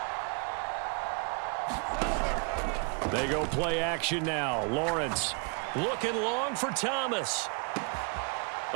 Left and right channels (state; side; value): quieter; left; 34.9 dB